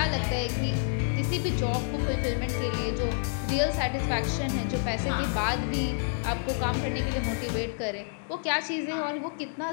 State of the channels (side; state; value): right; silent; digital silence